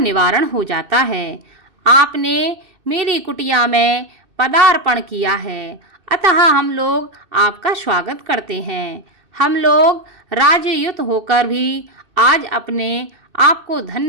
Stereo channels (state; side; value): late; left; 2.6 ms